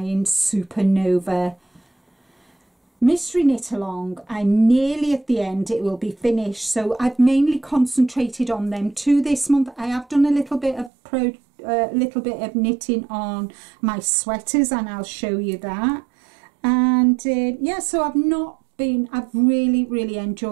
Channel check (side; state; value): left; drops out; at 10.9 s